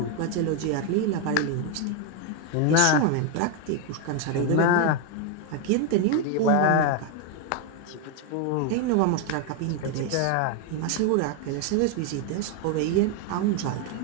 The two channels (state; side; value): different; both; correlation 0.01